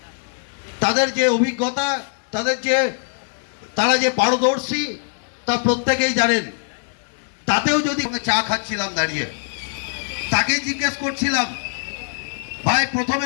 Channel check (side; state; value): right; silent; 64 dB below the other